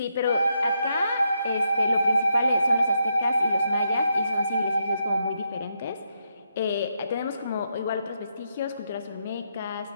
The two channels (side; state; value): both; inverted; correlation -0.81